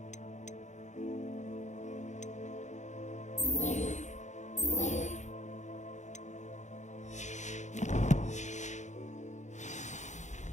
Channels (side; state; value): right; late; 0.34 ms